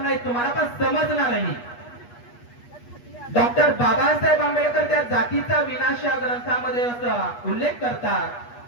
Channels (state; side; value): late; right; 8.3 ms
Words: तुम्हाला, पण समजणारही। डॉक्टर बाबासाहेब आंबेडकर त्या जातीचा विनाश या ग्रंथामध्ये असा उल्लेख करतात